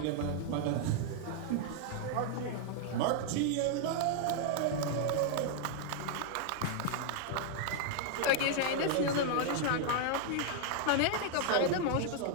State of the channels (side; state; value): both; different; correlation 0.00